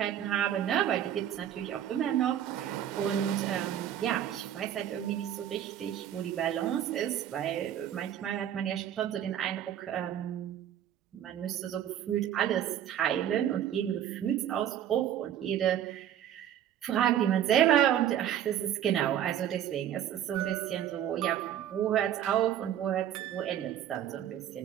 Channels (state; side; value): quieter; left; 10.6 dB